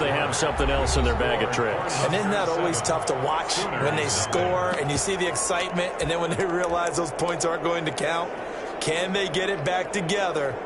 have something else in their bag of tricks. And isn't that always tough to watch when they score and you see the excitement, and then when they realize those points aren't going to count? Can they get it back together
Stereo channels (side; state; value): both; identical; correlation 1.00